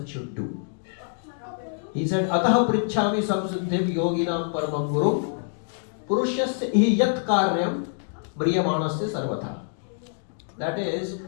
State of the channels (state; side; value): silent; right; digital silence